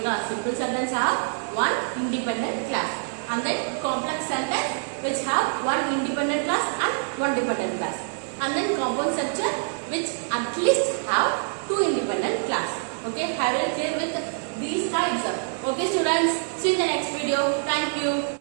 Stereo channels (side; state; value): left; silent; digital silence